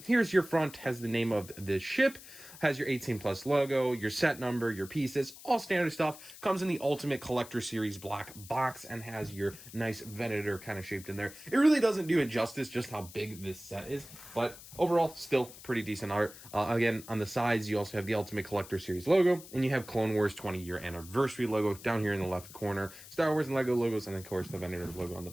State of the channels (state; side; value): noise; left; hiss, 17 dB below the sound